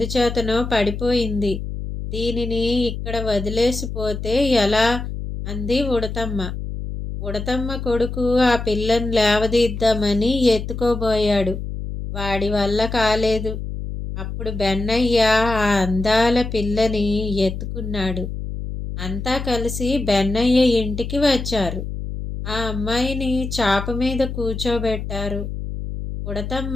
పడిపోయింది. దీనిని ఇక్కడ వదిలేసిపోతే ఎలా అంది ఉడతమ్మ. ఉడతమ్మ కొడుకు ఆ పిల్లను లేవదీద్దామని ఎత్తుకోబోయాడు. వాడి వల్ల కాలేదు. అప్పుడు బెన్నయ్య ఆ అందాల పిల్లని ఎత్తుకున్నాడు. అంతా కలిసి బెన్నయ్య ఇంటికి వచ్చారు. ఆ అమ్మాయిని చాప మీద కూర్చోబెట్టారు.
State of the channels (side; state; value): left; noise; hum, 6 dB below the sound